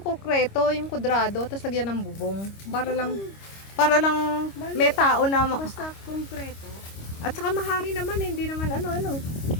yung kudrado, tapos lagyan ng bubong. Para lang may tao na, Basta konkreto. at saka mahangin naman, hindi naman ano.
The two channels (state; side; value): late; right; 25 ms